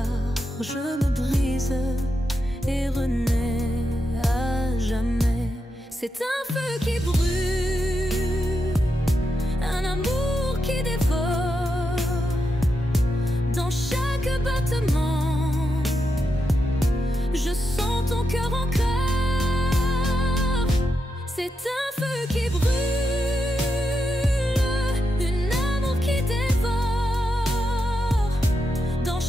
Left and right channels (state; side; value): normal; both; correlation 0.85